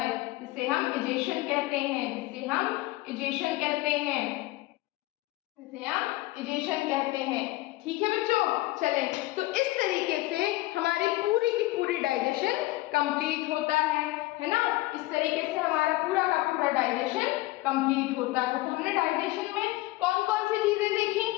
जिसे हम इजेशन कहते हैं, जिसे हम इजेशन कहते हैं, जिसे हम इजेशन कहते हैं। ठीक है बच्चों, चलें, तो इस तरीके से हमारी पूरी की पूरी डाइजेशन कंप्लीट होता है ना? इस तरीके से हमारा पूरा का पूरा डाइजेशन कंप्लीट होता है। तो हमने डाइजेशन में कौन कौन सी चीजें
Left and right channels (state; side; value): quieter; right; 19.2 dB